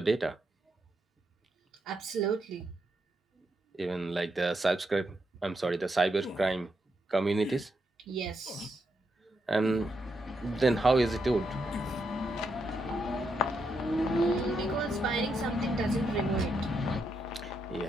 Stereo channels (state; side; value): normal; both; correlation 0.81